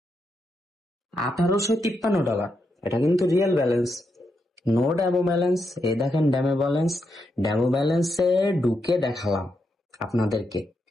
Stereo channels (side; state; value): both; normal; correlation 0.82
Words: $1853। এটা কিন্তু real balance, no demo balance. এই দেখেন ড্যামো ব্যালেন্স। ড্যামো ব্যালেন্সে ঢুকে দেখালাম আপনাদেরকে